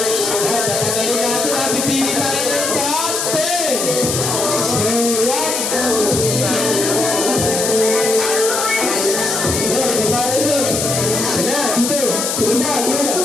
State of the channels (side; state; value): left; noise; hiss, 1 dB below the sound